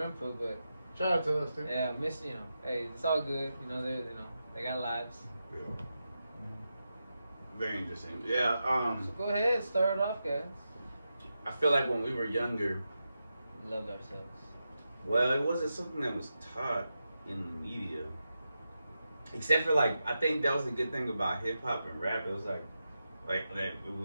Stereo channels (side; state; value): both; inverted; correlation -0.89